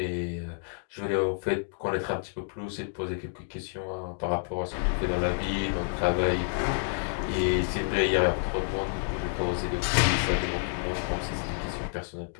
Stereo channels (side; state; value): right; silent; digital silence